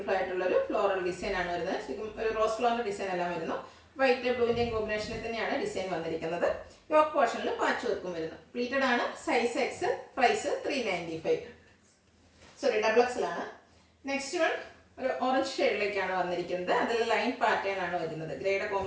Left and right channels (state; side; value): identical; both; correlation 1.00